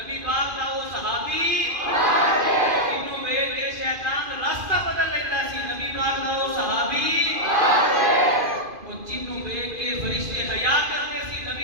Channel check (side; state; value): left; late; 2.5 ms